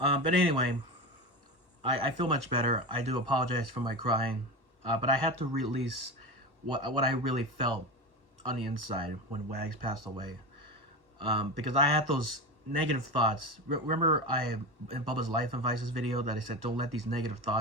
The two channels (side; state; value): left; late; 1.1 ms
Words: anyway, I feel much better. I do apologize for my crying, but I had to release what I really felt on the inside when Wags passed away, because I had those negative thoughts. Remember, in Bubba's Life and Vices video that I said, don't let these negative